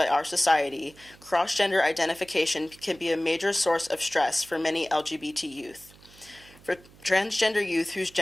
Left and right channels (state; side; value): noise; right; hum, 25 dB below the sound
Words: our society, cross-gender identification can be a major source of stress for many LGBT youth. For transgender youth whose